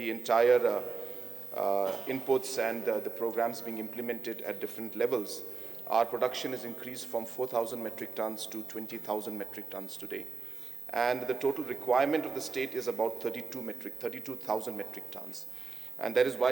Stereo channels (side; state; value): left; quieter; 4.7 dB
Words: entire inputs and the programs being implemented at different levels, our production has increased from 4,000 metric tons to 20,000 metric tons today. And the total requirement of the state is about 32,000 metric tons. And that is